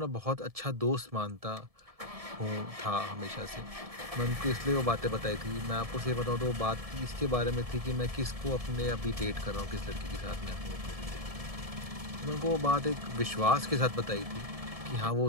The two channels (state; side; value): late; left; 1.7 ms